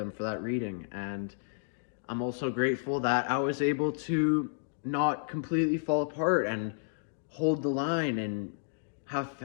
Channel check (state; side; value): silent; right; digital silence